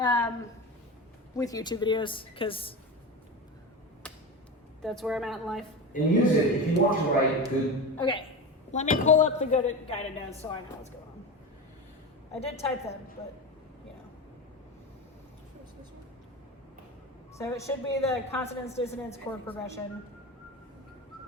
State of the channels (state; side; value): normal; both; correlation 0.24